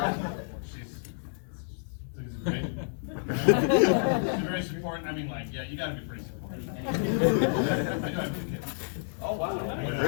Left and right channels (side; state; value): right; silent; digital silence